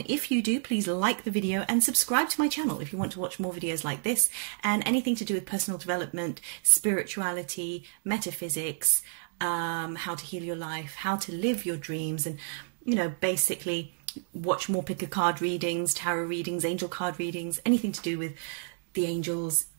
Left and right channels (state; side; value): silent; left; digital silence